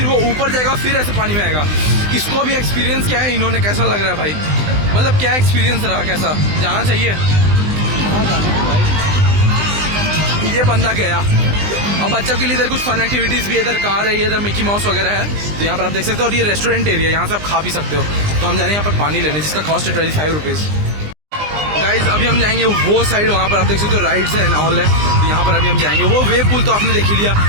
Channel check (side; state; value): left; late; 20 ms